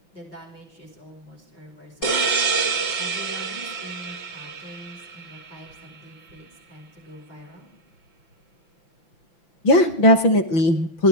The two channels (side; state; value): right; late; 6.0 ms